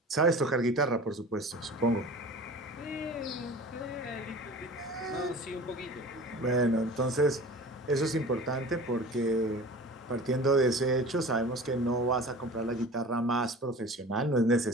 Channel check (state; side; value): normal; both; correlation 0.39